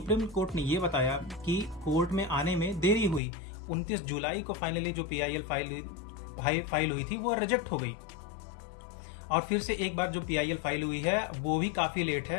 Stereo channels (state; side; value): drops out; right; at 3.2 s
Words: कोर्ट ने यह बताया कि कोर्ट में आने में देरी हुई। 29 जुलाई को फाइनली जो PIL फाइल हुई थी वो रिजेक्ट हो गई और फिर से एक बार जो PIL फाइल हुई है वो भी काफी लेट